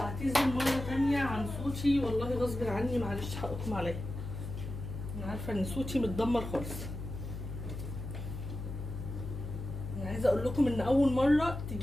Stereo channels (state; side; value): noise; left; hum, 7 dB below the sound